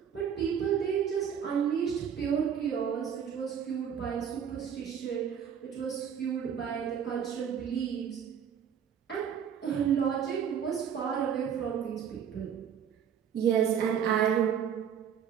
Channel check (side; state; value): left; quieter; 8.1 dB